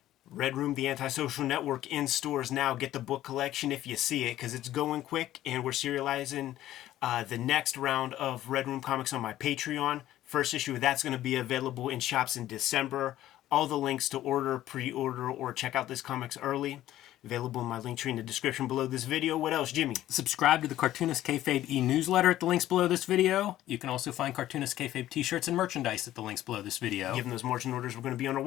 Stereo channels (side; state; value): right; quieter; 13.7 dB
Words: Red Room, the antisocial network, in stores now. Get the book collection if you see it, because it's going quick, and we're serializing the next round of Red Room comics on my Patreon. First issue of that's going to be available in shops in December. All the links to order, pre-order, or check out this comics early, available in my link tree in the description below this video. What else, Jimmy? Subscribe to the Cartoonist Kayfabe e-newsletter at the links below this video. You can also find Cartoonist Kayfabe t-shirts and merchandise at the links below this video. Given those margin orders, we're going to be on our